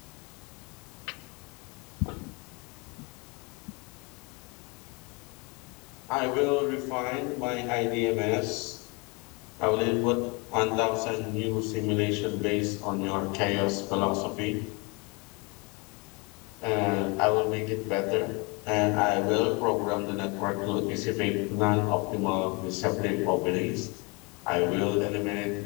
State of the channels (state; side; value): quieter; right; 29.5 dB